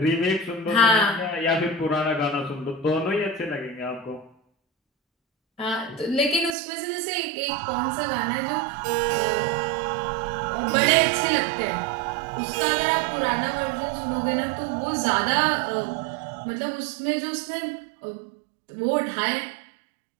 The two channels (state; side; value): drops out; left; at 6.6 s